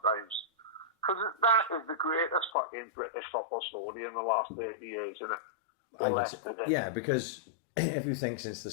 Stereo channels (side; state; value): right; drops out; at 2.5 s